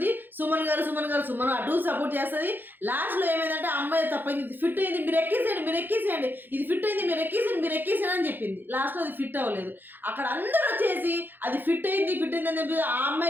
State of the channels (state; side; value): late; left; 0.091 ms